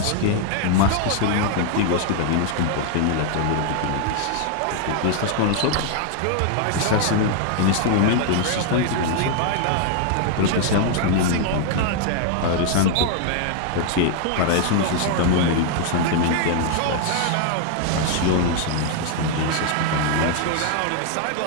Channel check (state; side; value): different; both; correlation 0.00